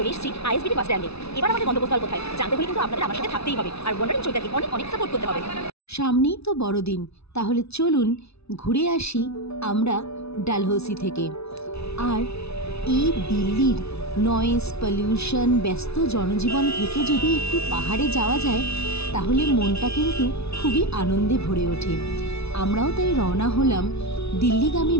এসেছি আইএসবিটি বাস স্ট্যান্ডে। এবার আমাদের গন্তব্যস্থল কোথায় জানতে হলে কিন্তু আপনাদের আমার সাথে থাকতেই হবে, আর ওয়ান্ডারিং চৈতাকে অনেক অনেক সাপোর্ট করতে হবে। সামনেই তো বড়দিন, তাহলে চলুন ঘুরে আসি আমরা ডালহৌসি থেকে। আর এই দিল্লির নয়েজ, পলিউশন, ব্যস্ত জনজীবন থেকে যদি একটু পাহাড়ে যাওয়া যায় তাহলে মনটা কিন্তু খুবই আনন্দে ভরে ওঠে। আমরাও তাই রওনা হলাম দিল্লিগামী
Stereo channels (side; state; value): right; late; 0.79 ms